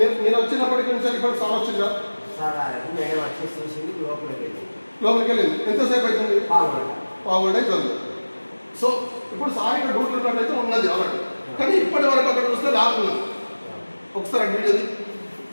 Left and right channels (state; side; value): inverted; both; correlation -1.00